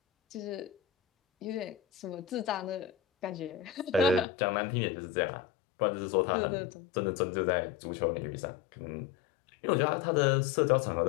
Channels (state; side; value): drops out; right; at 4.2 s